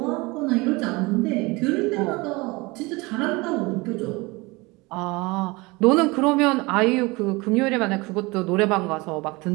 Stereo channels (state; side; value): quieter; left; 24.3 dB